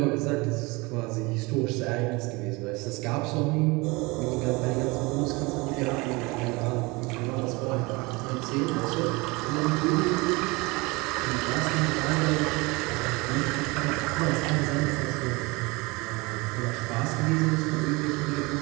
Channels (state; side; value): quieter; left; 25.1 dB